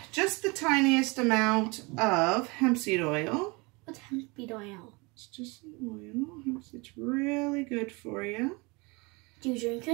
just the tiniest amount of hemp seed oil. What's hemp seed oil? It's just some oil. It's really good for you. Do you drink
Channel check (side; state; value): left; quieter; 27.1 dB